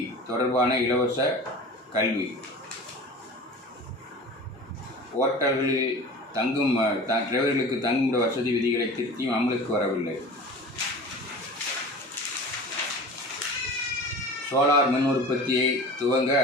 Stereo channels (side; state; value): both; normal; correlation 0.37